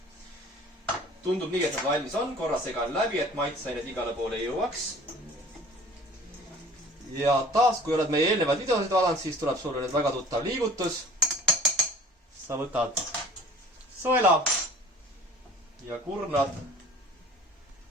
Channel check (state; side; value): normal; both; correlation 0.47